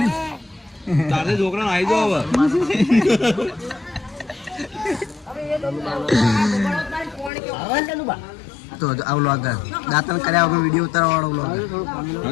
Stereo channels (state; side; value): drops out; right; at 7.3 s